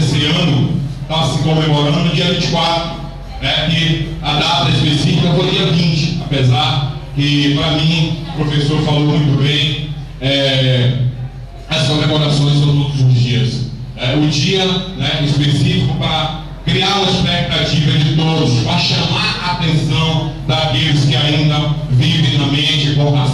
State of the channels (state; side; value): identical; both; correlation 1.00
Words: ano está se comemorando no dia 24, que a data específica foi dia 20, apesar que, para mim, o professor falou muito bem, as comemorações são todos os dias. O dia específico para criar uma expectativa de todos, para chamar a atenção daqueles que ainda vivem na mente com o